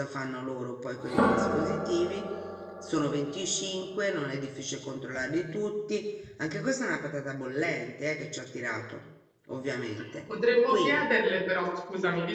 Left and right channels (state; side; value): identical; both; correlation 1.00